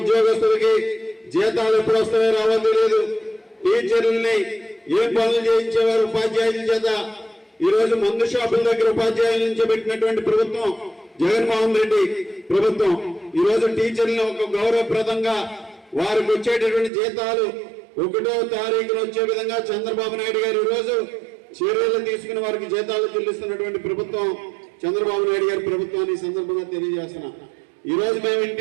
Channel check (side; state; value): left; drops out; at 16.9 s